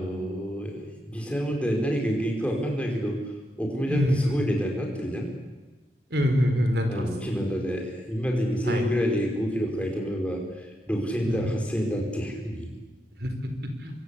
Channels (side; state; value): both; normal; correlation 0.84